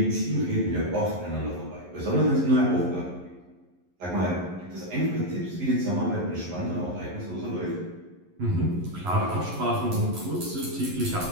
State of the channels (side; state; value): left; late; 11 ms